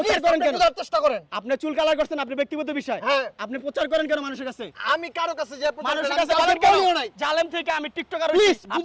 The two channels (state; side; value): identical; both; correlation 1.00